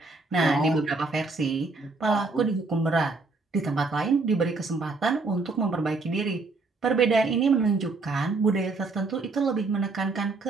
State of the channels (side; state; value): left; quieter; 3.7 dB